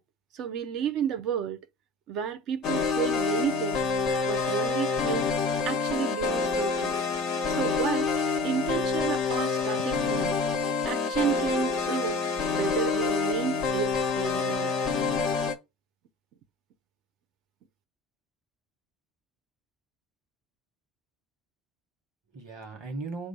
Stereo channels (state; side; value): normal; both; correlation 0.40